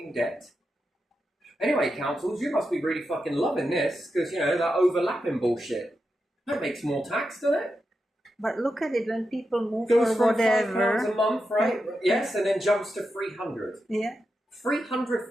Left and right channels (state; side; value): normal; both; correlation 0.88